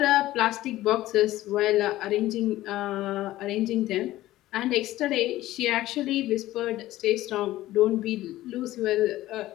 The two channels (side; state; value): right; quieter; 15.7 dB